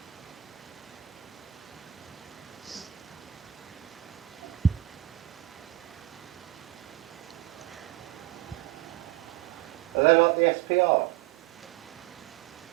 Are they like the SPR?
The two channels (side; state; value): left; quieter; 14.0 dB